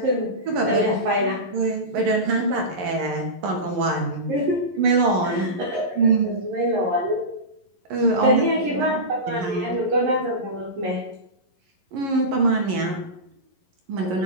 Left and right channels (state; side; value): late; left; 11 ms